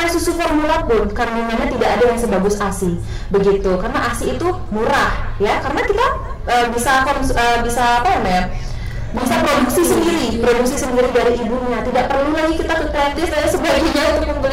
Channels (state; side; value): identical; both; correlation 1.00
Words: susu formula pun kandungannya tidak ada yang sebagus ASI, begitu. Karena ASI itu murah ya, karena kita bisa apa namanya, bisa produksi sendiri dari ibunya, tidak perlu lagi kita ke kreatif dan sebagainya untuk